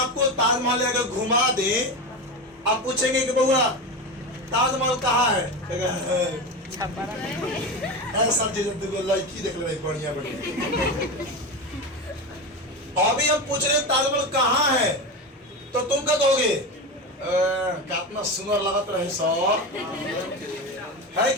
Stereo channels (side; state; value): both; normal; correlation 0.21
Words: ताजमहल अगर घुमा दें, आप पूछेंगे कि बउआ ताजमहल कहाँ है, सब लड़की देख ले बढ़िया बढ़िया। अभी हम पूछ रहे ताजमहल कहाँ है, तो तुम क्या कहोगे, कितना सुंदर लगत रहे सर, है